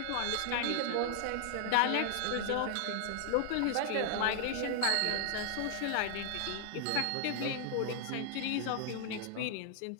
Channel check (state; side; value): different; both; correlation 0.00